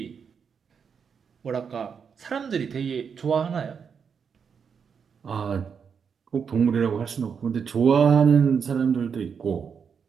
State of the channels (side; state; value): left; quieter; 6.6 dB